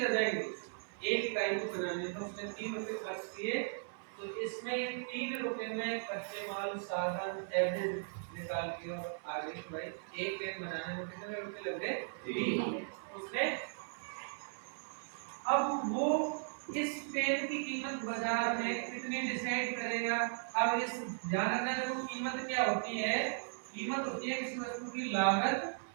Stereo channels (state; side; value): silent; left; 53 dB below the other